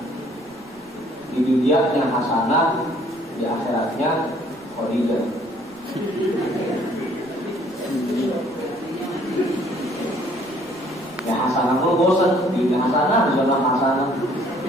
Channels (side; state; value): right; noise; rumble, 29 dB below the sound